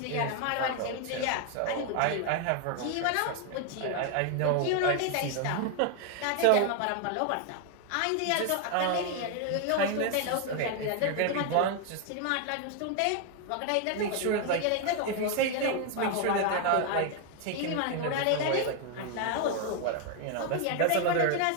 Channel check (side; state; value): both; different; correlation 0.01